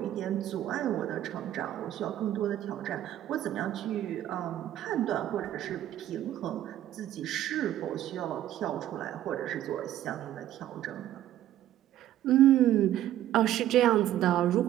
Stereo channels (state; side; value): quieter; left; 12.6 dB